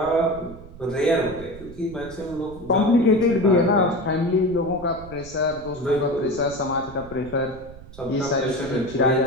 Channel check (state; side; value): noise; right; rumble, 17 dB below the sound